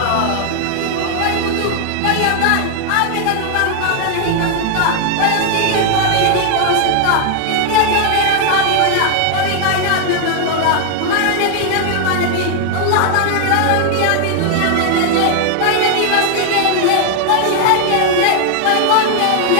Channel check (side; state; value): both; different; correlation 0.00